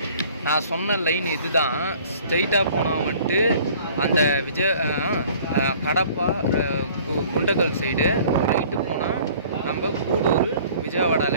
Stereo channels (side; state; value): both; inverted; correlation -0.52